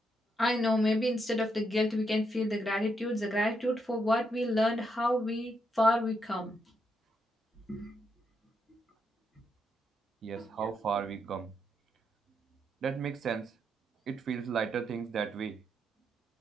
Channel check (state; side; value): normal; both; correlation 0.79